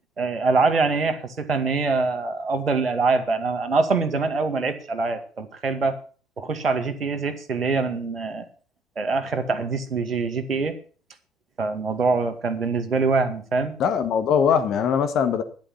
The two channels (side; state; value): both; normal; correlation 0.62